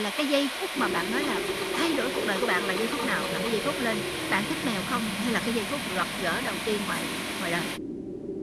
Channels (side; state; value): both; identical; correlation 1.00